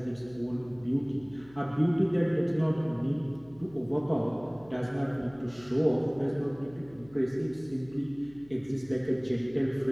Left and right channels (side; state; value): left; noise; hum, 24 dB below the sound